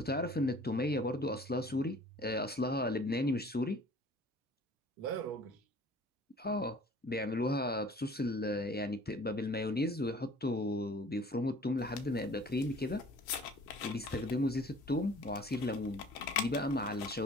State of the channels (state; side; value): normal; both; correlation 0.50